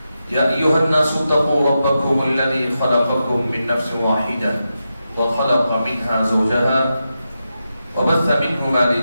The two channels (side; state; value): both; inverted; correlation -0.88